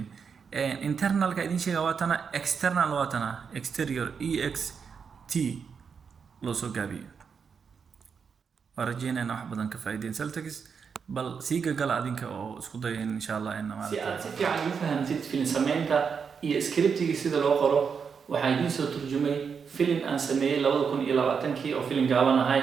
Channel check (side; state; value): left; quieter; 6.2 dB